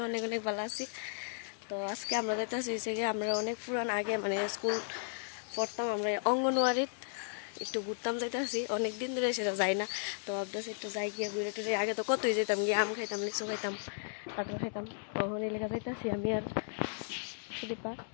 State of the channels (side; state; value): right; silent; digital silence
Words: অনেক অনেক ভালো আছি। তো আজকে আমরা যাইতেছি গিয়ে আমরা অনেক পুরান আগে স্কুল পড়তাম, আমরা অঙ্গনওয়াড়িত একটু ঘুরতাম যাইতেছি। অনেক দিন ধরে সেটা যাই না, তো ভাবতেছি একটু যাই গিয়ে ঘুরে টুরে। আগে তো কতই যেতাম, গিয়ে আম খাইতাম, লিচু খাইতাম, কাঁঠাল খাইতাম। তখন এই লেখা যাইতেছি আমি আর দীপা।